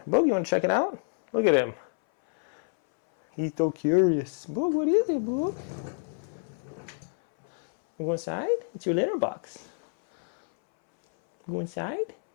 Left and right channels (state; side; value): silent; right; 60 dB below the other